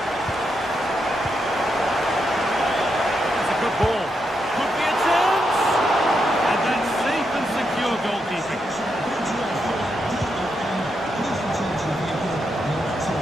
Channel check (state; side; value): normal; both; correlation 0.83